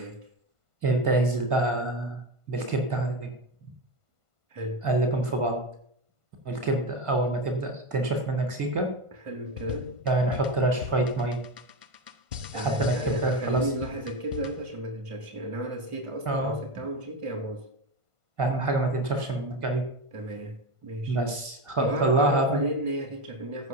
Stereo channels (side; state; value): left; late; 1.5 ms